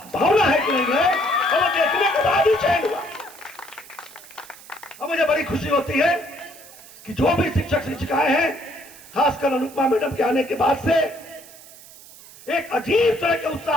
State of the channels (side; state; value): right; noise; hiss, 20 dB below the sound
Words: है कि नहीं है, और वो देखने के बाद ही चयन हुआ। और मुझे बड़ी खुशी होती है कि जो भी शिक्षक शिक्षिकाएं हैं, खासकर अनुपमा मैडम के आने के बाद से एक अजीब तरह के